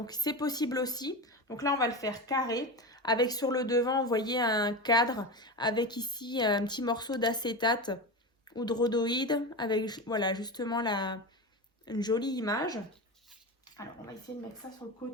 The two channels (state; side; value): normal; both; correlation 0.22